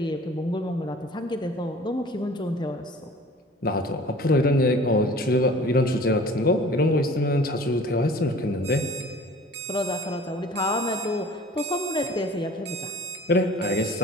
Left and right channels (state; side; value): normal; both; correlation 0.46